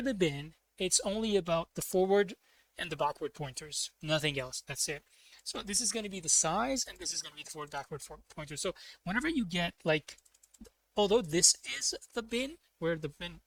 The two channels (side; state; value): both; identical; correlation 1.00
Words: the bin it's only about the forward and the backward pointers, nothing else. That's it. So this is going to be the size, and this is going to be the forward backward pointer. So whenever you get like although this is the bin, where the bin,